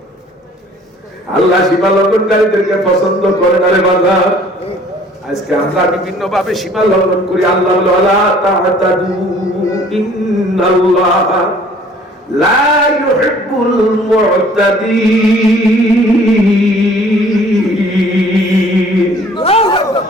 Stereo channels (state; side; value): normal; both; correlation 0.54